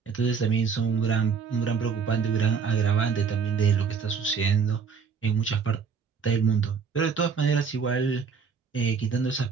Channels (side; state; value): left; quieter; 5.8 dB